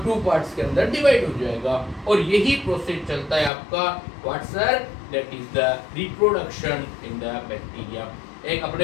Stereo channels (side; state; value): right; drops out; at 3.5 s